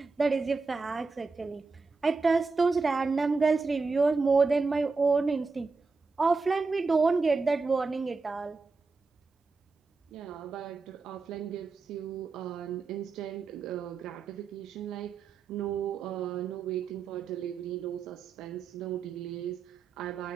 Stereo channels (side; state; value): left; quieter; 4.2 dB